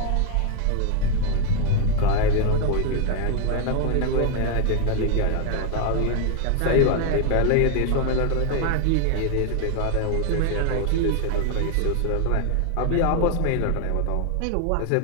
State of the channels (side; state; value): both; different; correlation 0.01